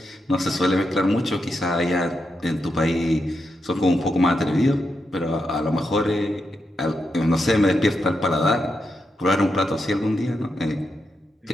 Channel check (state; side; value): normal; both; correlation 0.85